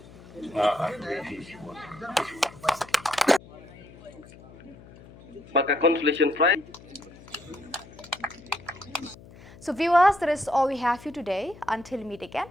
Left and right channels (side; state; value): left; noise; hum, 20 dB below the sound